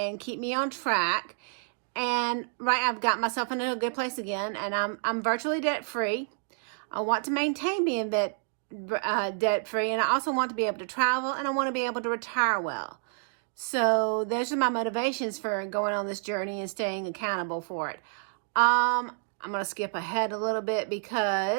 keep me on track. And I've got myself in a good place again, and I'm virtually debt free. I want to maintain being debt free, and I also want to be able to travel, and I want to be able to retire well. So those are my motivations for going on this journey and staying accountable for it. I'm going to skip ahead a little bit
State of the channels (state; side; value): silent; left; digital silence